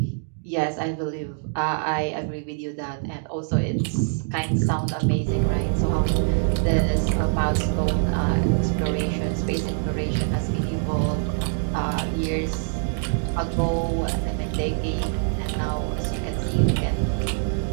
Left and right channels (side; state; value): left; silent; digital silence